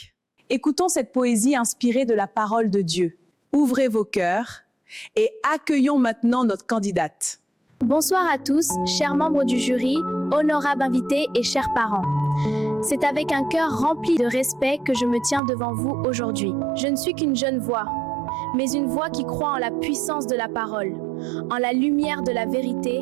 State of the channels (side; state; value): left; drops out; at 15.4 s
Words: Écoutons cette poésie inspirée de la parole de Dieu. Ouvrez vos cœurs et accueillons maintenant notre candidate. Bonsoir à tous, chers membres du jury, honorables invités et chers parents. C'est avec un cœur rempli de respect que je me tiens devant vous aujourd'hui. Je ne suis qu'une jeune voix, mais une voix qui croit en la puissance de la parole, en la lumière de la